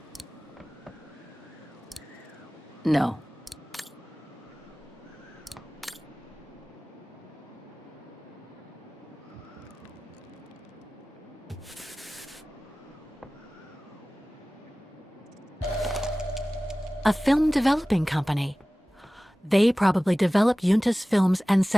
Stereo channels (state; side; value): normal; both; correlation 0.97